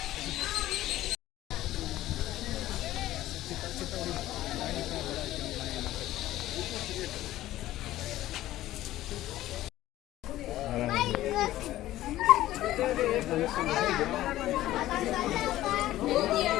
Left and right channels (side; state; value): right; quieter; 14.9 dB